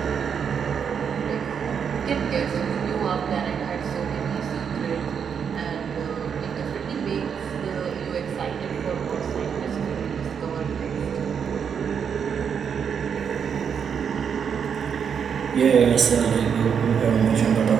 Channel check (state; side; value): quieter; left; 7.2 dB